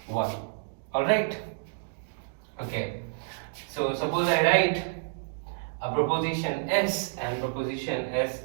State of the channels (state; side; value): silent; left; digital silence